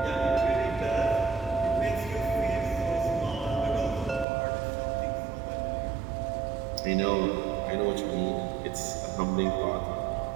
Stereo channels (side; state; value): left; drops out; at 4.2 s